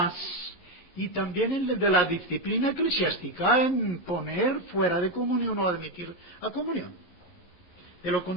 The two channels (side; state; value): right; late; 11 ms